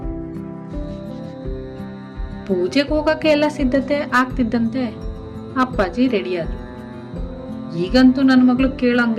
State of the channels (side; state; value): both; identical; correlation 1.00